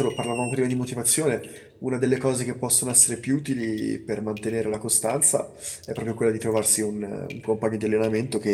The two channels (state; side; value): identical; both; correlation 1.00